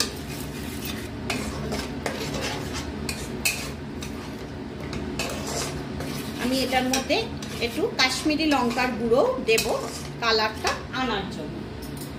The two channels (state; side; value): identical; both; correlation 1.00